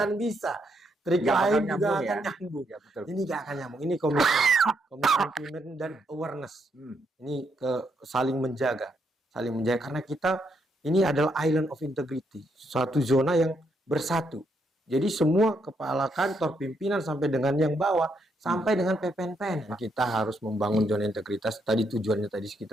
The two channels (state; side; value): normal; both; correlation 0.77